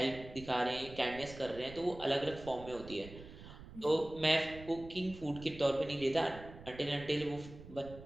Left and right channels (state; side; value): noise; right; rumble, 15 dB below the sound